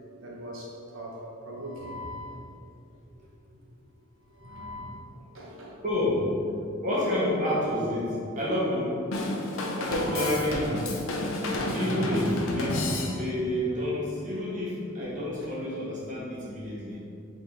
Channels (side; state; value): both; normal; correlation 0.37